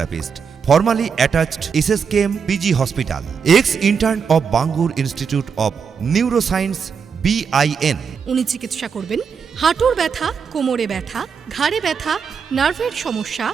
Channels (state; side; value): quieter; left; 6.3 dB